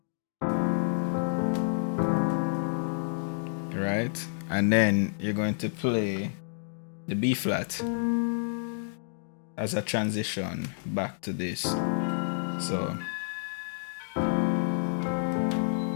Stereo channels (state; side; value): silent; right; digital silence